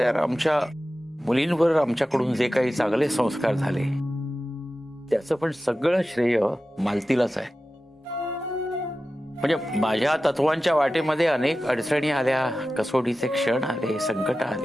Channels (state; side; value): normal; both; correlation 0.94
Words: आमच्या मुलींवर आमच्याकडून जे काही चांगले संस्कार झाले त्याचं पण सगळं श्रेय मालतीलाच आहे. म्हणजे माझ्या तत्वांच्या वाटेमध्ये अनेक अडचणी आल्या, कसोटीचे क्षण आले, संकट